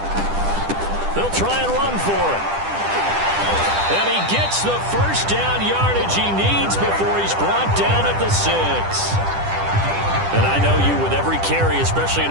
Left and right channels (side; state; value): left; late; 10 ms